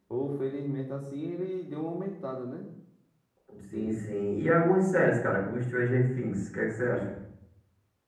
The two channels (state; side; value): identical; both; correlation 1.00